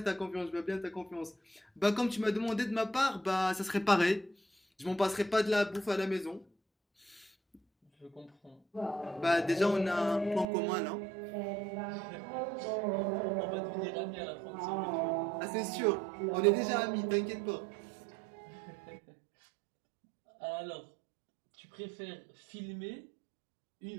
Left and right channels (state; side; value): drops out; left; at 10.5 s